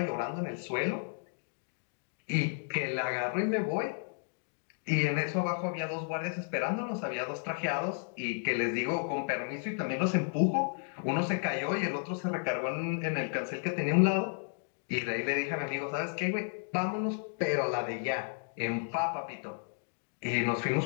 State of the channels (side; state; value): right; silent; 56 dB below the other